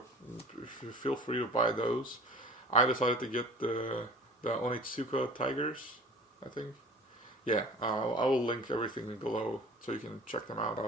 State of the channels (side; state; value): both; normal; correlation 0.43